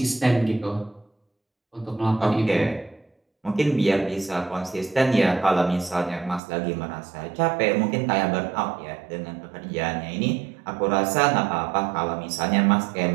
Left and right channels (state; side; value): drops out; left; at 6.4 s